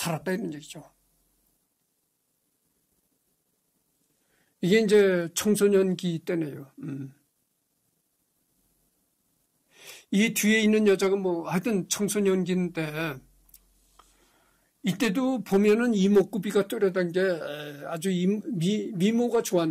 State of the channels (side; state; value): both; identical; correlation 1.00